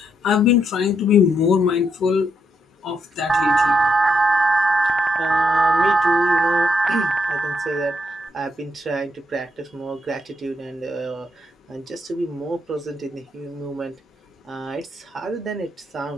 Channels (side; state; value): both; normal; correlation 0.78